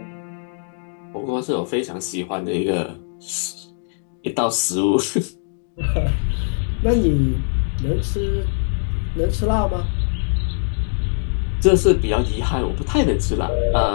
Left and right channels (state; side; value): silent; right; digital silence